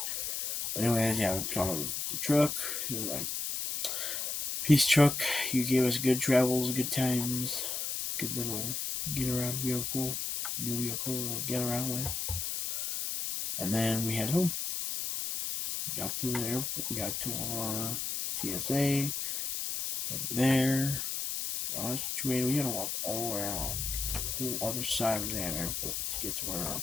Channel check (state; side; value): noise; left; hiss, 2 dB below the sound